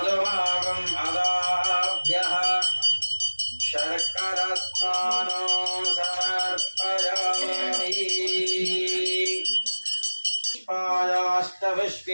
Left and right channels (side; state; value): both; inverted; correlation -1.00